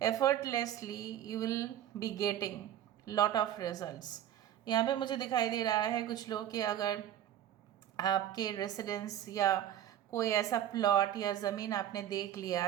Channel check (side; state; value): left; quieter; 11.2 dB